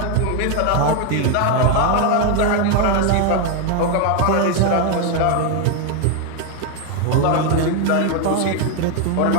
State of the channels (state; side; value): different; both; correlation 0.01